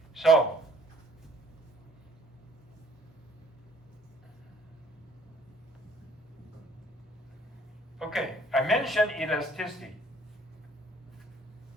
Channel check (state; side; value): normal; both; correlation 0.60